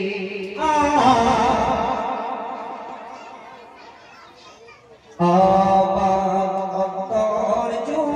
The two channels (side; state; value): both; identical; correlation 1.00